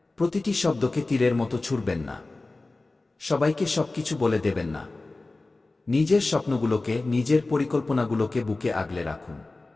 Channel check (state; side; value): quieter; right; 3.2 dB